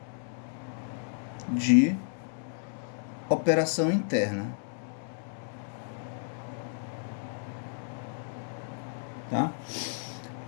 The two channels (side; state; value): right; silent; digital silence